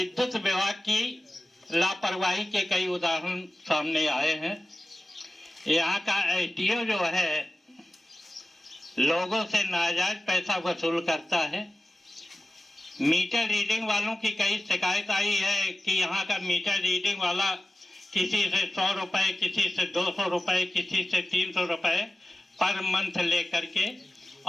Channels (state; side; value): normal; both; correlation 0.95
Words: विभाग की लापरवाही के कई उदाहरण सामने आए हैं। यहाँ का एसडीओ जो है लोगों से नाजायज पैसा वसूल करता है। मीटर रीडिंग वालों की कई शिकायत आई है कि यहाँ का मीटर रीडिंग वाला किसी से 100 रुपए, किसी से 200 रुपए, किसी से 300 रुपए पर मंथ लेकर के